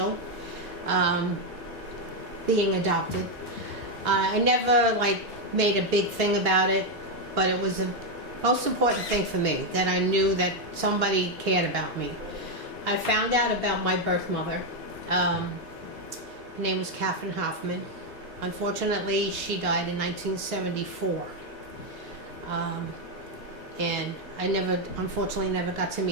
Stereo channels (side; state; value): both; normal; correlation 0.04